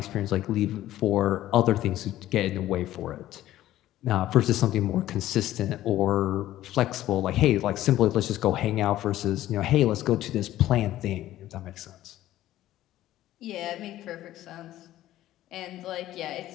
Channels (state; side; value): quieter; right; 14.1 dB